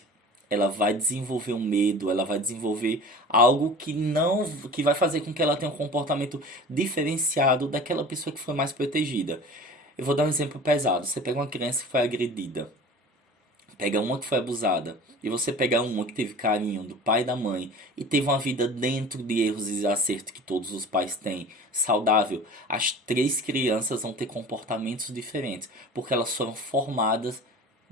ela vai desenvolver um medo, ela vai desenvolver algo que não, que vai fazer com que ela tenha um comportamento diferenciado daquela pessoa que foi mais protegida. Eu vou dar um exemplo pesado. Você pega uma criança que foi agredida, pega uma que foi abusada, e você pega uma que teve carinho do pai e da mãe e teve uma vida dentro de erros e acertos que todos os pais têm, saudável, as três crianças vão ter comportamentos diferentes, porque elas foram formadas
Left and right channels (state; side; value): normal; both; correlation 0.39